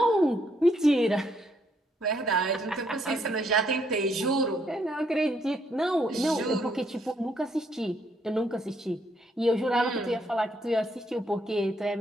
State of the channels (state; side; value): normal; both; correlation 0.72